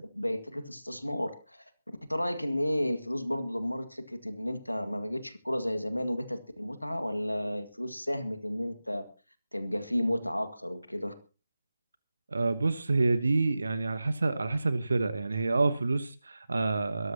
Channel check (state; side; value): inverted; both; correlation -0.94